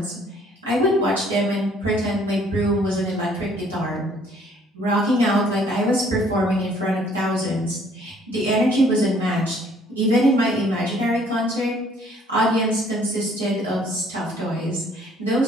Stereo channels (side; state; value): both; normal; correlation 0.60